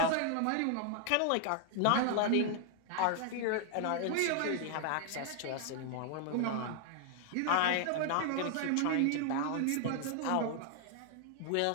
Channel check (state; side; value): different; both; correlation 0.00